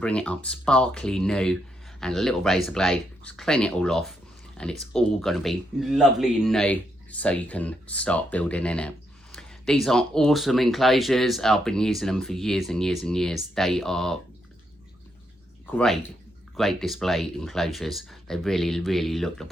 it up sparkly new, and a little razor blade, just clean it all off, and it's all going to be lovely and new, so you can start building in it. These are awesome enclosures. I've been using them for years and years and years. They are great display enclosures. They really look the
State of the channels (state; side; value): normal; both; correlation 0.79